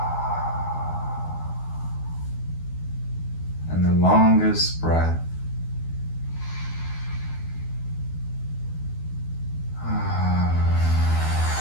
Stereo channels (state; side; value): late; right; 12 ms